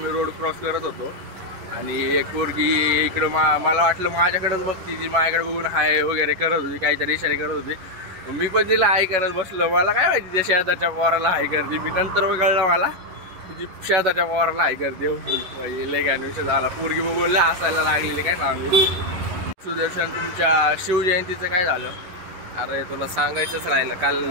रोड क्रॉस करत होतो आणि एक पोरगी इकडं मला वाटलं माझ्याकडेच बघती, ती माझ्याकडे बघून हाय वगैरे करत होती, काहीतरी इशारे करत होती. मी पण तिला हाय करत बसलो. मला काय माहिती त्या शेजारच्या पोराला हाय करते. मी नंतर कळलं मला की शेजारच्या पोराला हाय करते. लय काय विषय झाला, पोरगी बघून लय हसायला लागलेली. काय सांगू. सुदर्शन तुमच्या शिवजयंतीचं काय झालं. अरे तुला सांगायचंच राहिलं, काल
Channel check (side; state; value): left; late; 11 ms